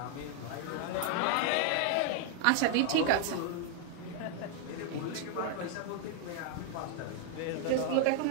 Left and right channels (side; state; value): both; different; correlation 0.00